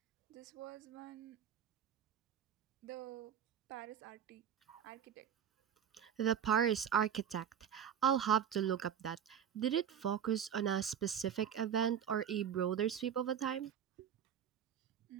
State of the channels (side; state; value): left; quieter; 8.6 dB